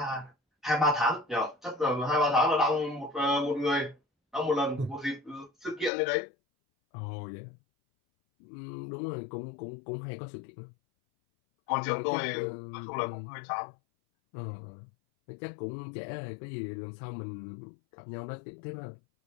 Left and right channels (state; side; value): drops out; right; at 5.9 s